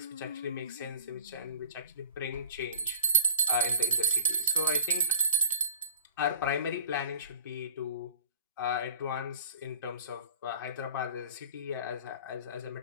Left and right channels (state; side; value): inverted; both; correlation -0.44